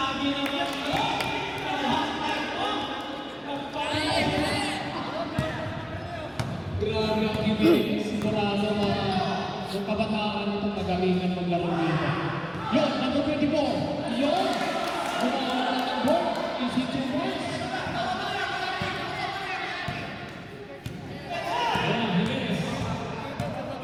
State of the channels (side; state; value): both; identical; correlation 1.00